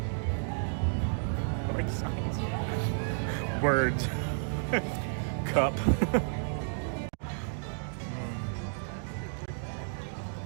I like science. Words. Cup.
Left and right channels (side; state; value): left; silent; digital silence